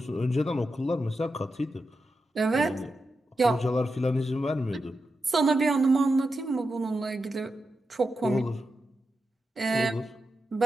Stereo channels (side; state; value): both; normal; correlation 0.88